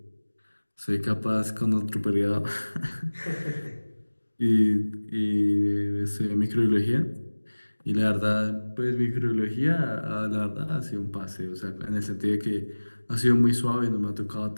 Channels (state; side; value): inverted; both; correlation -1.00